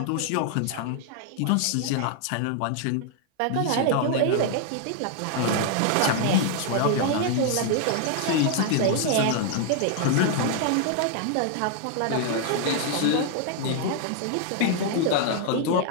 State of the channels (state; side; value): different; both; correlation 0.00